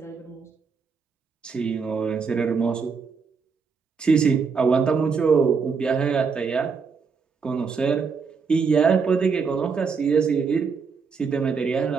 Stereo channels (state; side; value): quieter; left; 5.4 dB